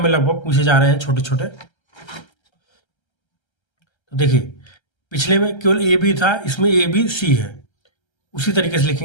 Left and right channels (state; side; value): late; right; 1.3 ms